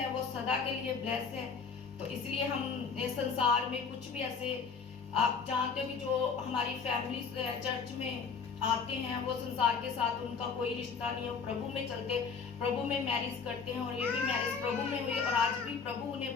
वो सदा के लिए ब्लेस है। तो इसलिए हम संसार में कुछ भी ऐसे, आप जानते हो कि जो हमारी फैमिली चर्च में आते हैं वो संसार के साथ उनका कोई रिश्ता नहीं है, वो प्रभु में चलते, प्रभु में मैरिज करते हैं, और ये भी मैरिज प्रभु में हुई और आज भी प्रभु उन्हें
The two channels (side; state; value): right; quieter; 5.6 dB